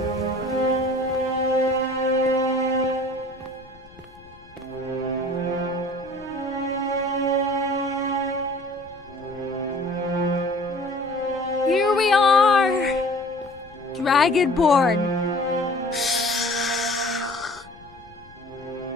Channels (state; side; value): noise; left; rumble, 24 dB below the sound